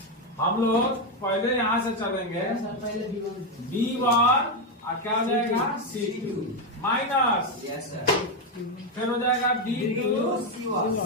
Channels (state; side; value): normal; both; correlation 0.07